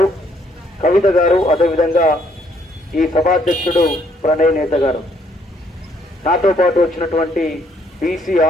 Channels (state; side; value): normal; both; correlation 0.68